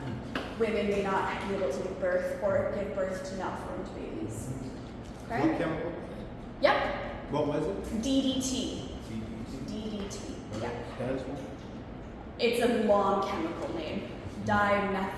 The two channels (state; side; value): identical; both; correlation 1.00